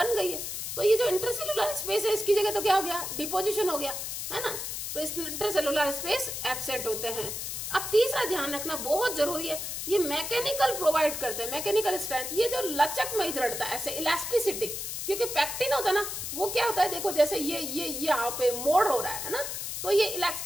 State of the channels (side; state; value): left; noise; hiss, 5 dB below the sound